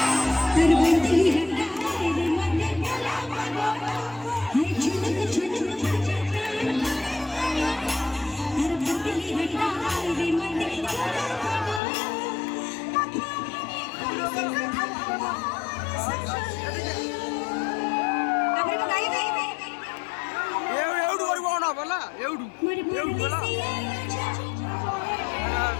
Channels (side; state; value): right; drops out; at 11.8 s